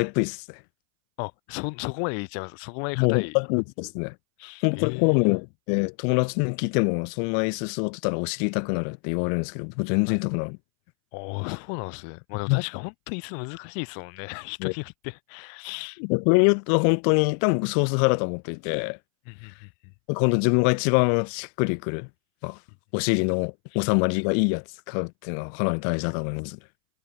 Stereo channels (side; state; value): right; silent; 62 dB below the other